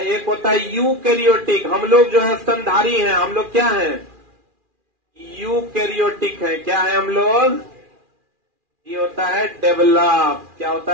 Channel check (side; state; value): left; late; 2.4 ms